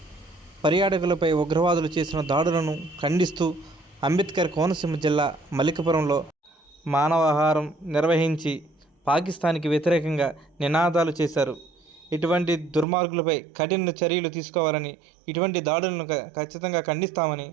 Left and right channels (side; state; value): left; drops out; at 12.9 s